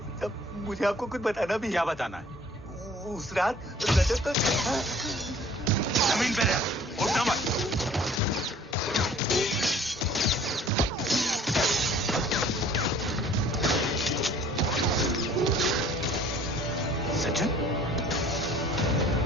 मुझे आपको कुछ बताना भी है। क्या बताना है? उस रात रजत तो जमीन पे रह, उठना मत। सज्जन,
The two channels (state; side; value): normal; both; correlation 0.52